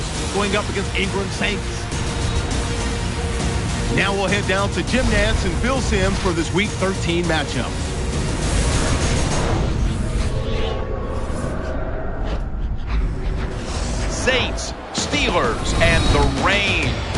going up against Ingram Saints. Now we'll head down to Jim Nantz and Phil Simms for this Week 13 matchup. Saints, Steelers, and the rain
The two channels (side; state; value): both; identical; correlation 1.00